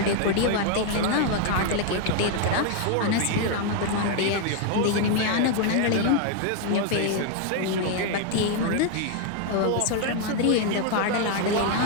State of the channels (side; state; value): both; different; correlation 0.01